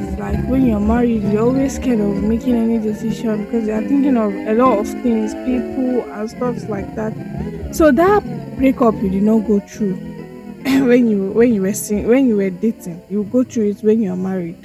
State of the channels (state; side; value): identical; both; correlation 1.00